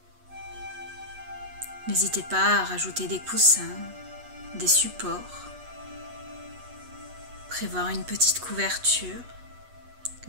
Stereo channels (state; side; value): late; left; 8.2 ms